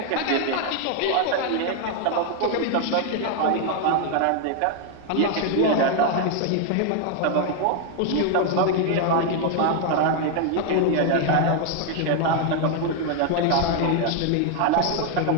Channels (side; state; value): both; different; correlation 0.00